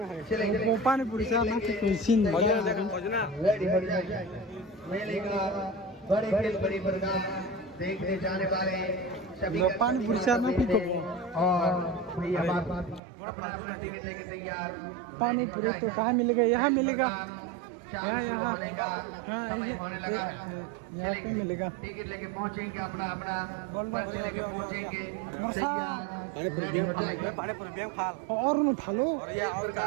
चलेंगे pani puri sa na sin ready हो जाए मेले का बड़े खेल बड़ी प्रकार देखने जाने वाले सभी pani puri sa na ki ko और भैया बात अपना टिकट लेके तैयार pani puri तो कहाँ मिलेगा यहाँ मिलेगा यहाँ हाँ यहाँ पे मिलेगा टिकट लेके पहुंचेंगे अपना अपना बोल दो लेके पहुंचेंगे मुर्सा पानी पूरी बेम खाल और न थालो ये और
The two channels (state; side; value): drops out; left; at 13.0 s